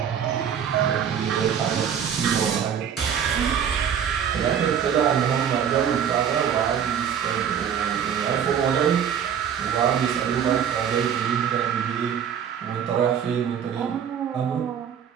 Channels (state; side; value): quieter; left; 8.4 dB